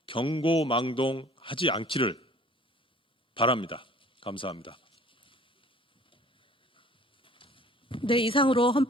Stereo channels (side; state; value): both; normal; correlation 0.52